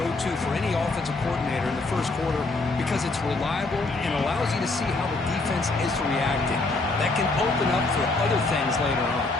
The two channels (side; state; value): right; quieter; 3.3 dB